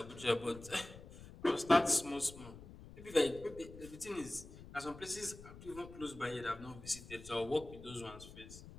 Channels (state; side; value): noise; left; rumble, 16 dB below the sound